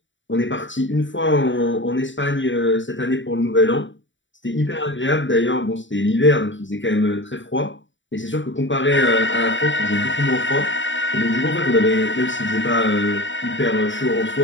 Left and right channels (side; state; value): right; late; 0.55 ms